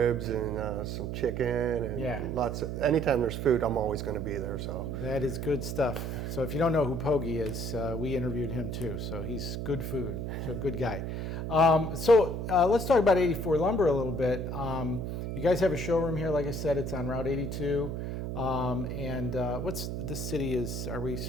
and some chicken and lots of, anytime there's food, I'm always going to be there. So that is good stuff. So if you don't know who Pokey is, we interviewed him too. So he's good food, so good guy. So let's talk about 84 Lumber a little bit. You guys have a showroom here, like I said, it's on Route 82. And what's the city is?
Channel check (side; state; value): right; noise; hum, 4 dB below the sound